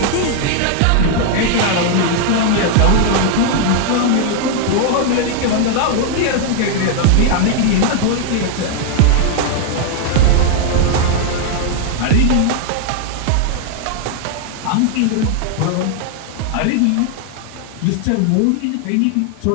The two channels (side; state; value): both; different; correlation 0.00